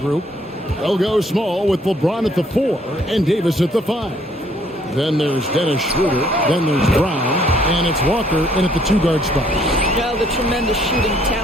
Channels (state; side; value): normal; both; correlation 0.64